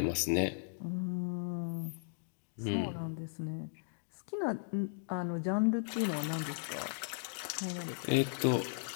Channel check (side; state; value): right; silent; digital silence